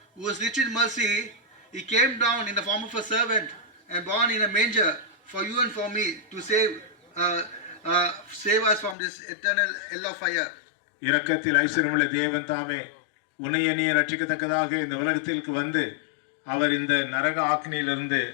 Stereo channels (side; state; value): right; drops out; at 9.0 s